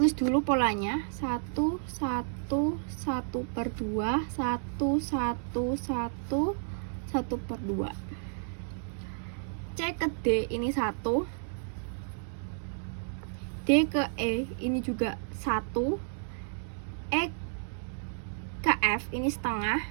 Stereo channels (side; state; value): left; silent; digital silence